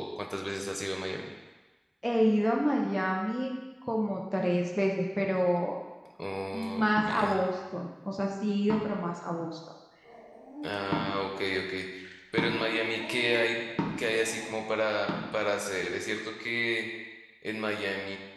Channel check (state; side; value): identical; both; correlation 1.00